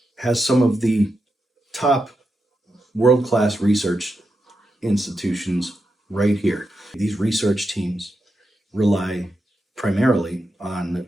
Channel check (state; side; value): normal; both; correlation 0.87